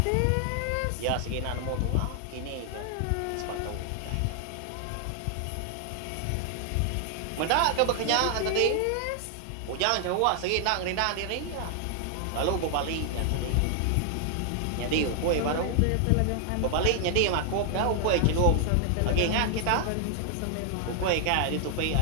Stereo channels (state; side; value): different; both; correlation 0.00